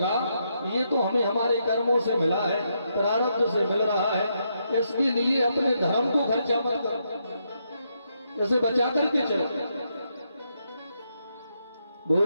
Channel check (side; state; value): both; inverted; correlation -0.79